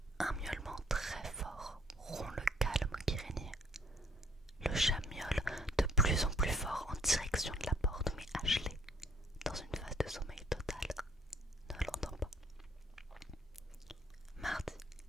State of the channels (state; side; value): normal; both; correlation 0.61